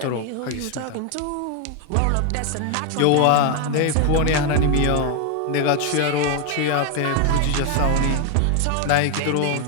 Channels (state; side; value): different; both; correlation 0.01